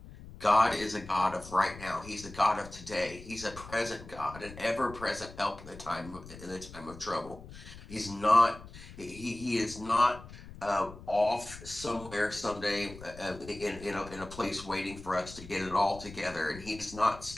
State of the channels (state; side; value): noise; left; rumble, 16 dB below the sound